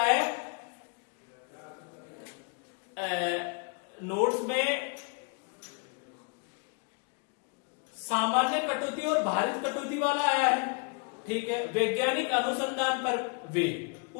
है, नोट्स में सामान्य कटौती और भारित कटौती वाला आया है। ठीक है, वैज्ञानिक अनुसंधान पर वे,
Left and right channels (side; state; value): right; quieter; 35.8 dB